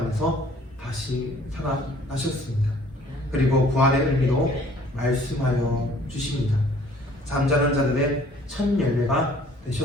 다시 살아나셨습니다. 그리고 부활의 의미로 말씀하여 주십니다. 잠자는 자들의 첫 열매가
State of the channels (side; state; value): both; normal; correlation 0.56